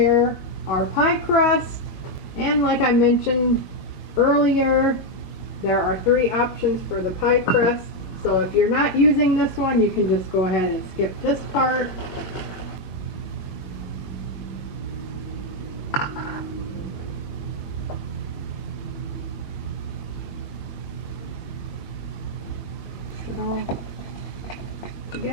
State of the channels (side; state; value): right; late; 22 ms